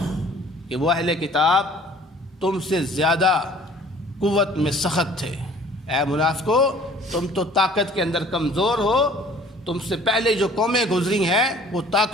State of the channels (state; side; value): normal; both; correlation 0.52